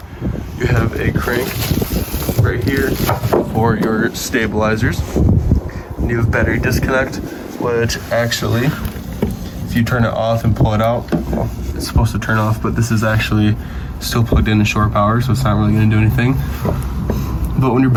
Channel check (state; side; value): identical; both; correlation 1.00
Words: You have a crank right here for your stabilizers. And you have battery disconnect, which actually, if you turn it off and pull it out, well, it's supposed to turn off, but this is actually still plugged in to shore power, so it's not really going to do anything. But when your